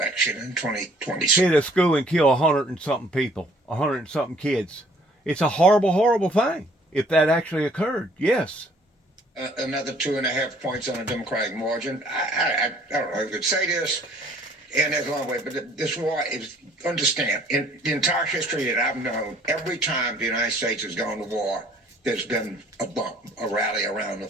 in 2020. hit a school and kill 100 and something people, 100 and something kids. It's a horrible, horrible thing. If that actually occurred, yes. Another 2.5 points on a Democratic margin. I don't know if I could say this, and there's a long way, but this war is, understand, in the entire history that I've known, every time the United States has gone to war, there's been a bump, a rally around the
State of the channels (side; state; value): both; normal; correlation 0.58